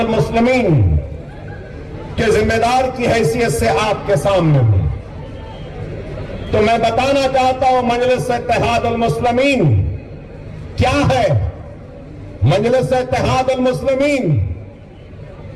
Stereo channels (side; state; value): both; identical; correlation 1.00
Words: کے ذمہ دار کی حیثیت سے آپ کے سامنے ہوں، تو میں بتانا چاہتا ہوں مجلس اتحاد المسلمین کیا ہے۔ مجلس اتحاد المسلمین